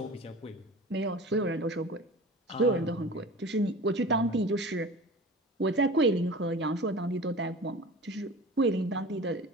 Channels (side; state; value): both; normal; correlation 0.37